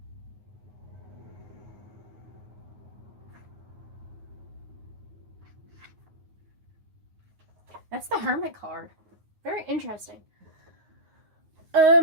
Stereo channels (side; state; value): left; late; 9.5 ms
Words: That's the Hermit card. Very interesting.